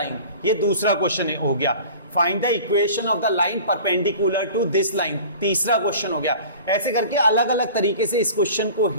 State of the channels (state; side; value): inverted; both; correlation -0.42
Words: ये दूसरा क्वेश्चन हो गया। Find the equation of the line perpendicular to this line, तीसरा क्वेश्चन हो गया। ऐसे करके अलग अलग तरीके से इस क्वेश्चन को